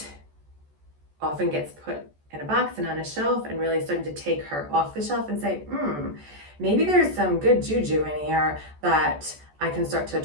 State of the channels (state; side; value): late; left; 14 ms